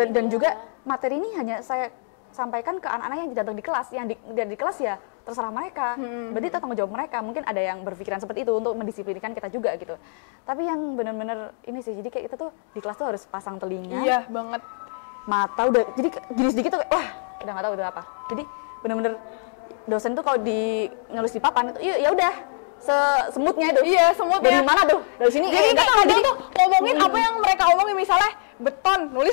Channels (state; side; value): silent; right; digital silence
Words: dan juga materi ini hanya saya sampaikan ke anak-anak yang datang di kelas, yang di kelas ya terserah mereka. Berarti itu tanggung jawab mereka. Mungkin ada yang berpikiran seperti itu untuk mendisiplinkan kita juga gitu. Tapi yang benar-benar ini sih, jadi kayak kita tuh di kelas tuh harus pasang telinga, Iya banget. mata udah, jadi gini sedikit tuh kayak, wah udah nggak tahu itu apa. Jadi benar-benar dosen tuh kalau nulis di papan itu ya udah semutnya itu. Iya, semutnya. Dari mana tuh? Dari sini. Jadi nggak kayak tahu, kadang tuh ngomongin apa yang mereka omongin, misalnya beton,